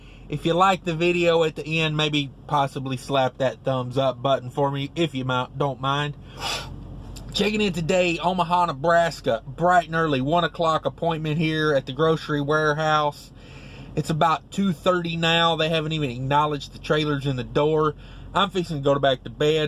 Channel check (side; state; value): both; identical; correlation 1.00